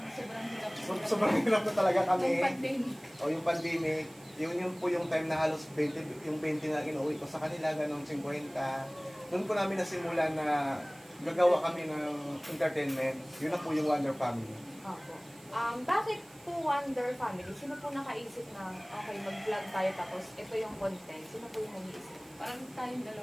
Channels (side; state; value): right; noise; hiss, 24 dB below the sound